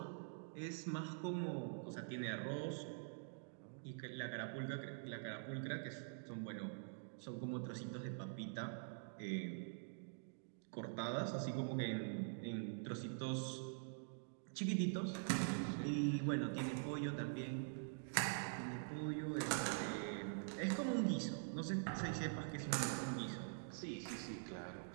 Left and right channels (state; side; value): silent; left; digital silence